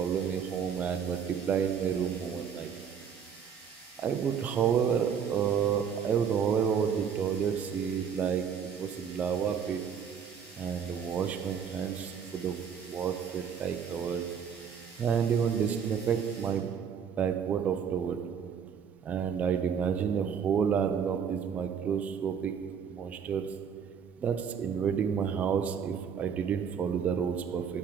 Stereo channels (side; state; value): left; quieter; 7.3 dB